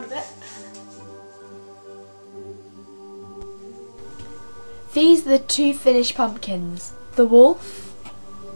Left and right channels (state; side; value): inverted; both; correlation -1.00